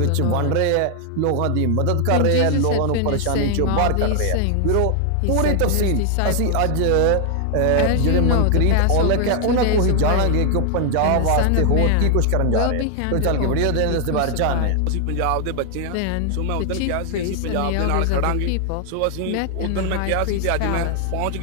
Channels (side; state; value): both; different; correlation 0.00